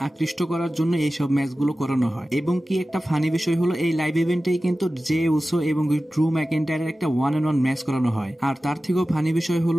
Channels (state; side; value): normal; both; correlation 0.95